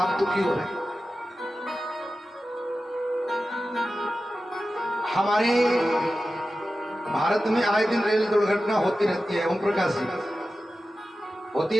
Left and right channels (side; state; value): both; normal; correlation 0.93